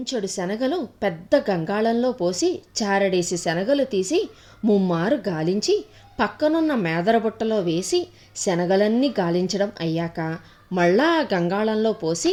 శనగలు పెద్ద గంగాళంలో పోసి చారడేసి శనగలు తీసి ముమ్మారు గాలించి పక్కనున్న మేదరబుట్టలో వేసి శనగలన్నీ గాలించడం అయ్యాక మళ్ళా ఆ గంగాళంలో పోసి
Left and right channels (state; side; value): identical; both; correlation 1.00